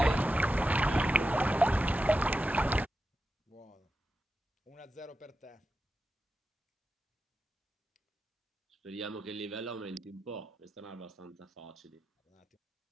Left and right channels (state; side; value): normal; both; correlation 0.89